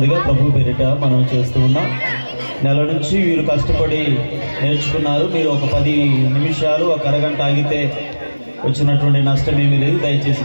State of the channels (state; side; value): inverted; both; correlation -1.00